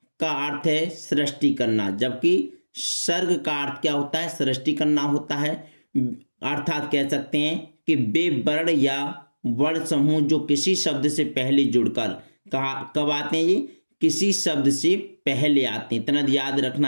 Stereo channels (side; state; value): both; inverted; correlation -1.00